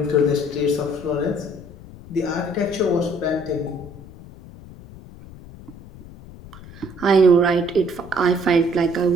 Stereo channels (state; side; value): noise; left; rumble, 18 dB below the sound